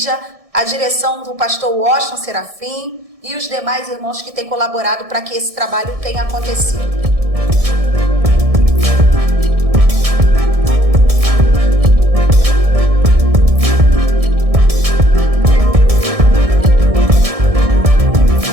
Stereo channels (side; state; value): left; late; 1.6 ms